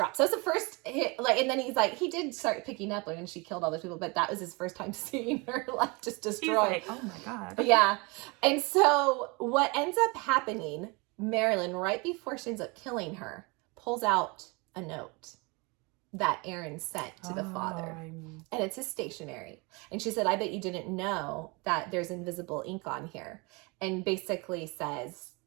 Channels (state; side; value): quieter; left; 28.1 dB